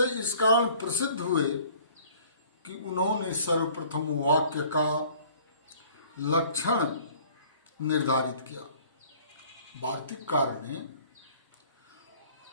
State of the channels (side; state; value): both; inverted; correlation -0.53